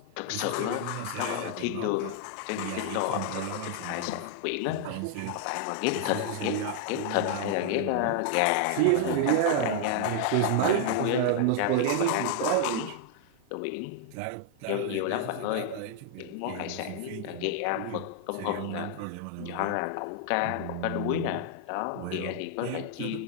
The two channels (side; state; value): both; different; correlation 0.00